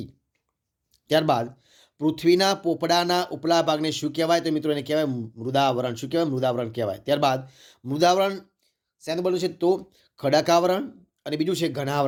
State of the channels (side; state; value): both; identical; correlation 1.00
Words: ત્યારબાદ પૃથ્વીના પોપડાના ઉપલા ભાગને શું કહેવાય? તો મિત્રો એને કહેવાય મૃદાવરણ. શું કહેવાય? મૃદાવરણ કહેવાય. ત્યારબાદ મૃદાવરણ શેનું બનેલું છે? તો ખડકાવરણ અને બીજું છે